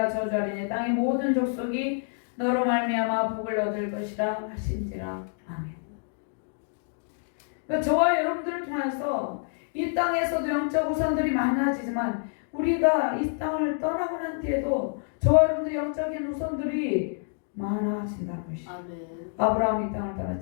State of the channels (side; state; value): right; silent; digital silence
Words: 저주하리니 땅의 모든 족속이 너로 말미암아 복을 얻을 것이라 하신지라. 아멘. 그러니까 저와 여러분들을 통해서 이 땅에서도 영적 우선들이 많아지지만 우리가 이 땅을 떠나고 난 뒤에도 저와 여러분들의 영적인 우선들이 많아진다는 것이죠. 아브라함이 이 땅을